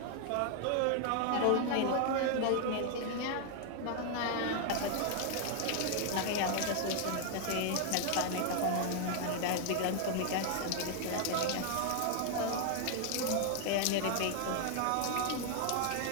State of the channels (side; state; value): both; different; correlation 0.00